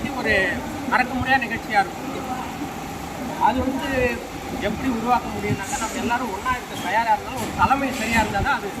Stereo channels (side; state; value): both; identical; correlation 1.00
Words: ஒரு மறக்க முடியாத நிகழ்ச்சியாக இருக்கும். அது வந்து எப்படி உருவாக்க முடியும்னாக்கா நம்ம எல்லாரும் ஒன்றா இருக்க தயாராக இருந்தாலும் ஒரு தலைமை சரியாக இருந்தால் தான் அது